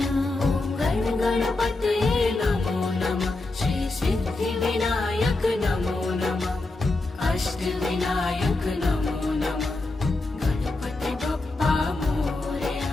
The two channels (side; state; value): right; quieter; 3.1 dB